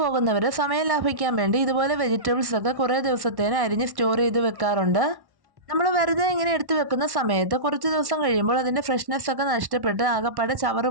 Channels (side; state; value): left; late; 1.1 ms